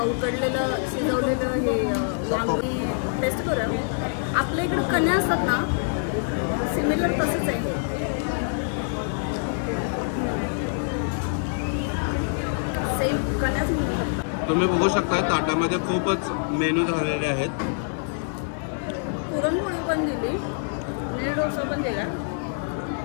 उकडलेलं शिजवलेलं हे वांगी. टेस्ट करूया. आपल्या इकडं कण्या असतात ना, सिमिलर तसंच आहे. सेम कण्याच म्हणतात. तुम्ही बघू शकता ताटामध्ये खूपच मेनू झालेले आहेत. पुरणपोळी पण दिली, नीर डोसा पण दिला.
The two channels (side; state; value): right; silent; 61 dB below the other